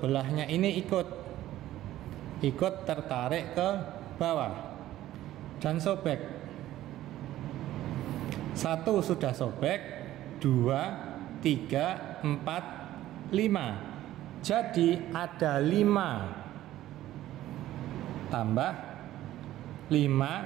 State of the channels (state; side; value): quieter; left; 14.1 dB